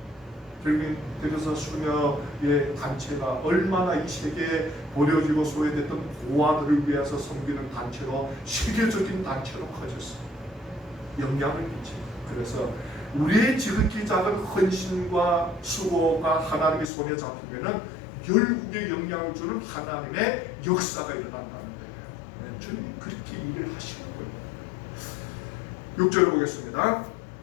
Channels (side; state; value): right; drops out; at 16.9 s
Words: 그래서 수녀의 단체가 얼마나 이 세계에 버려지고 소외됐던 고아들을 위해서 섬기는 단체로 세계적인 단체로 커졌어요. 영향을 끼칩니다. 그래서 우리의 지극히 작은 헌신과 수고가 하나님의 손에 잡히면은 열국에 영향을 주는 하나님의 역사가 일어난다는 거예요. 주님 그렇게 일을 하시는 거예요. 6절 보겠습니다.